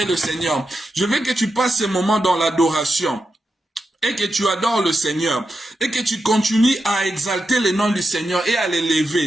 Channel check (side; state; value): both; normal; correlation 0.88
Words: le Seigneur. Je veux que tu passes ce moment dans l'adoration. Et que tu adores le Seigneur. Et que tu continues à exalter le nom du Seigneur et à